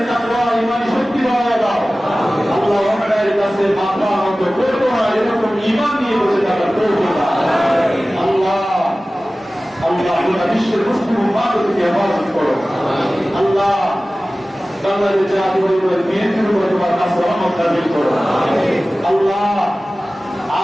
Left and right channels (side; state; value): both; normal; correlation 0.97